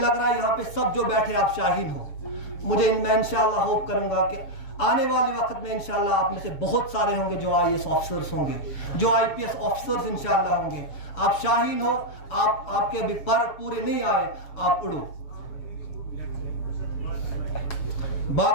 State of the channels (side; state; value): right; late; 6.9 ms